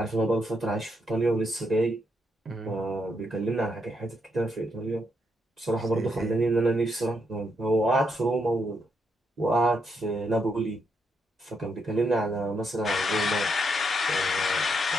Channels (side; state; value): both; normal; correlation 0.78